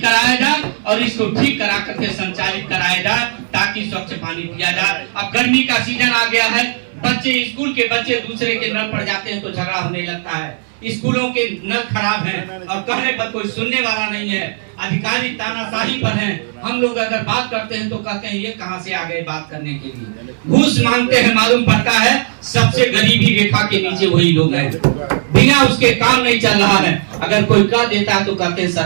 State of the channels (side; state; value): left; silent; 65 dB below the other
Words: कराया जाए, और इसको ठीक करा करके संचालित कराया जाए, ताकि स्वच्छ पानी पिया जाए। अब गर्मी का सीजन आ गया है, स्कूल के बच्चे दूसरे के नल पर जाते हैं तो झगड़ा होने लगता है। स्कूलों के नल खराब हैं और कहने पर कोई सुनने वाला नहीं है, अधिकारी तानाशाही पर हैं। हम लोग अगर बात करते हैं तो कहते हैं ये कहां से आ गए बात करने के लिए, घूस मांगते हैं। मालूम पड़ता है सबसे गरीबी रेखा के नीचे वही लोग हैं, बिना उसके काम नहीं चल रहा है। अगर कोई कह देता है तो कहते हैं